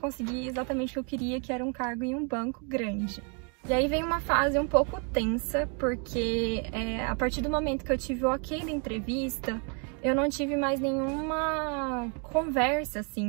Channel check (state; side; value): quieter; left; 37.8 dB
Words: exatamente o que eu queria, que era um cargo em um banco grande. E aí vem uma fase um pouco tensa, porque a partir do momento que eu tive o ok da entrevista, eu não tive mais nenhuma conversa,